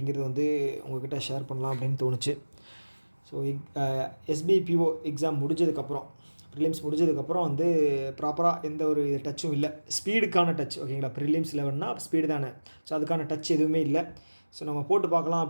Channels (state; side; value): inverted; both; correlation -1.00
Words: வந்து உங்கள்கிட்ட ஷேர் பண்ணலாம் அப்படின்னு தோணுச்சு. ஸோ எஸ்பிஐ பிஓ எக்ஸாம் முடிஞ்சதுக்கப்புறம், ப்ரிலிம்ஸ் முடிஞ்சதுக்கப்புறம் வந்து ப்ராப்பராக எந்த ஒரு டச்சும் இல்லை. ஸ்பீடுக்கான டச், ஓகேங்களா. ப்ரிலிம்ஸ் 11னா ஸ்பீடு தானே. ஸோ அதுக்கான டச் எதுவுமே இல்லை. ஸோ நம்ம போட்டு பார்க்கலாம்